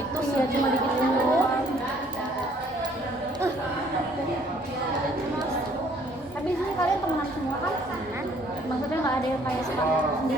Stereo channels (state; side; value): normal; both; correlation 0.61